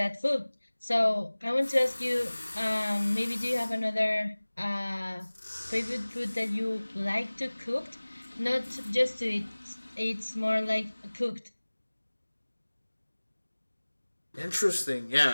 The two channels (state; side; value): inverted; both; correlation -1.00